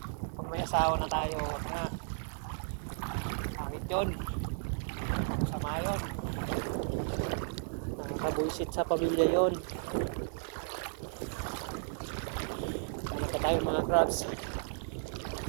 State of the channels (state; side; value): silent; left; digital silence